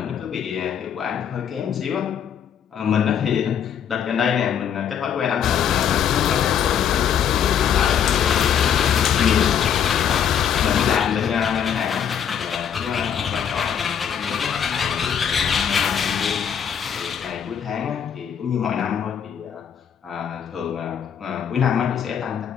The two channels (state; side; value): quieter; right; 8.4 dB